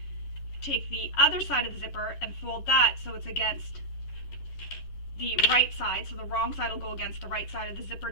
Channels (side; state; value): right; late; 11 ms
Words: Take the other side of the zipper and fold that so it's against the right side, so the wrong side will go against the right side of the zipper